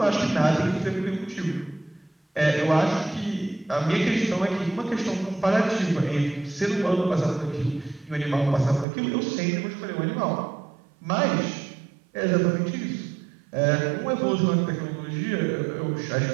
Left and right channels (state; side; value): drops out; left; at 8.8 s